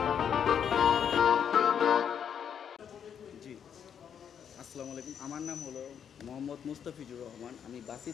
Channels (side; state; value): right; quieter; 8.1 dB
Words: জি, আসসালামু আলাইকুম। আমার নাম হলো মোহাম্মদ মুস্তাফিজুর রহমান। আমি